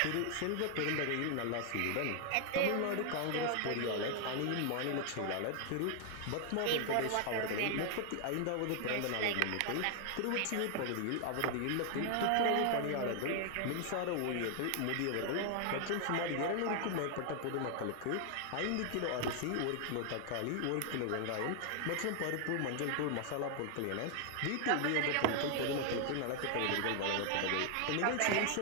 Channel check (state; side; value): different; both; correlation 0.00